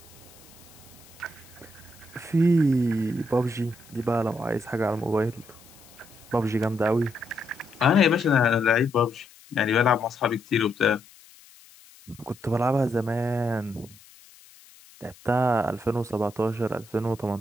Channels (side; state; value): left; noise; hiss, 24 dB below the sound